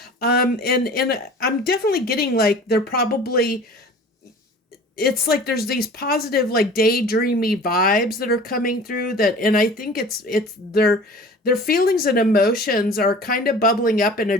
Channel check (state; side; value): normal; both; correlation 0.43